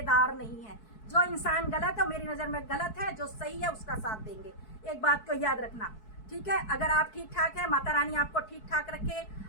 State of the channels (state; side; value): late; right; 4.6 ms